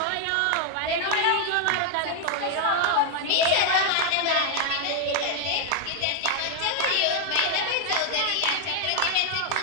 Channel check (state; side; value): different; both; correlation 0.00